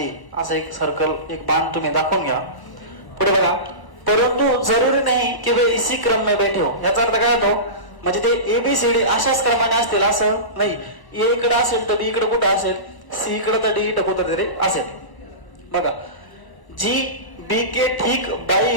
असं एक सर्कल एक बाण तुम्ही दाखवून घ्या. पुढे बघा, परंतु जरुरी नाही की वे इसी क्रम में बैठे हो. याचा अर्थ काय होतो, म्हणजे ते ABCD अशाच क्रमाने असतील असं नाही. A इकडे असेल तर B इकडे कुठं असेल, C इकडे तर D इकडे कुठं तरी असेल. बघा, जी B के ठीक बाई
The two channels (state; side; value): late; right; 1.0 ms